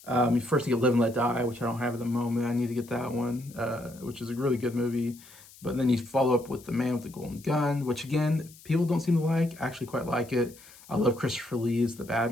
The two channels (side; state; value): left; noise; hiss, 22 dB below the sound